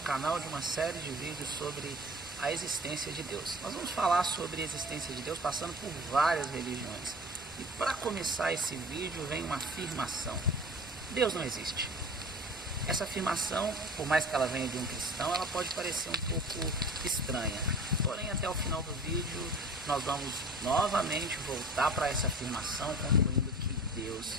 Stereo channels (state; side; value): normal; both; correlation 0.41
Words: de uma série de vídeos sobre a existência de Deus. Nós vamos falar sobre a existência de Deus passando por várias religiões. E para começar esse vídeo vem uma afirmação: Deus não existe. Essa afirmação, por mais que ela venha de um cristão, ela pode parecer um pouco estranha. Porém, até o final do vídeo, nós vamos novamente voltar para essa afirmação, concluindo que Deus